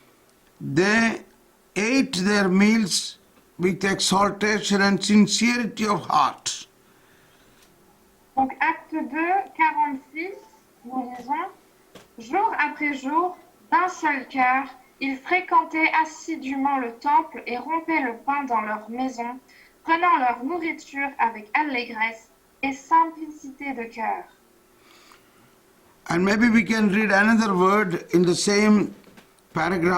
They ate their meals with exaltation and sincerity of heart. Donc, acte 2, 46, nous lisons « Jour après jour, d'un seul cœur, ils fréquentaient assidûment le temple et rompaient le pain dans leur maison, prenant leur nourriture avec allégresse et simplicité de cœur. » And maybe we can read another word in the same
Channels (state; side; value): identical; both; correlation 1.00